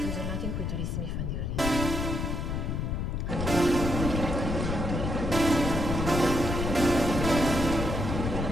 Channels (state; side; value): noise; left; rumble, 2 dB below the sound